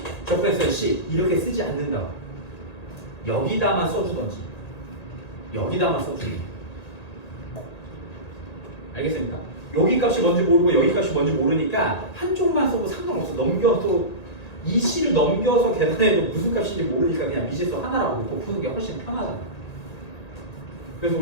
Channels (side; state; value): right; late; 1.9 ms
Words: 적분했으면 C 이렇게 쓰지 않는다고. 여기다만 써주던지 여기다만 써주는. 알겠습니까? 여기 값이 뭔지 모르고 여기 값이 뭔지 모르니까 한쪽만 써도 상관없어. 넘겨서 이 C를 넘겨서 계산해도 무슨 값인지 모르니까 그냥 미지수 하나라고 놓고 푸는 게 훨씬 편하잖아. 그래서